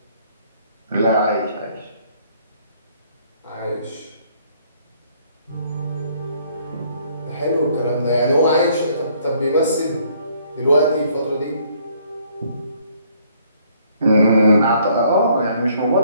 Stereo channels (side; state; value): both; inverted; correlation -0.64